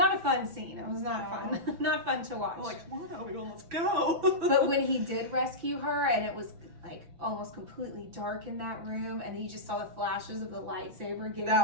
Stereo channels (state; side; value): late; left; 6.0 ms